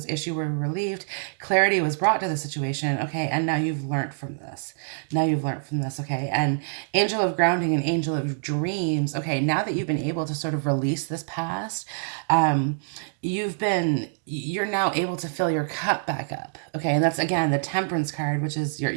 issues were relieved, clarity was brought to the situation, okay, and now you've learned from this. Okay, and angel of grounding and angel of dreams, okay, now that you've been able to sort of release this past, you're now able to fill your cup back up. Okay, and that's again the Temperance card, which is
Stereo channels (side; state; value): left; silent; digital silence